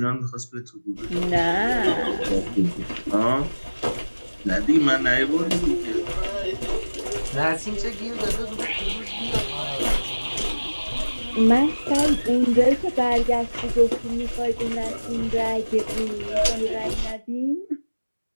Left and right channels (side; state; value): both; inverted; correlation -1.00